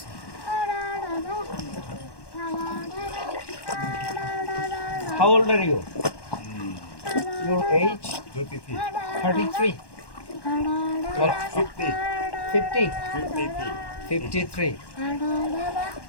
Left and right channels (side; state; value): right; late; 1.1 ms